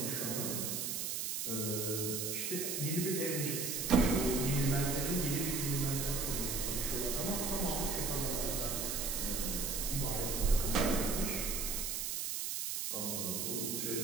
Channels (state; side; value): noise; right; hiss, 1 dB below the sound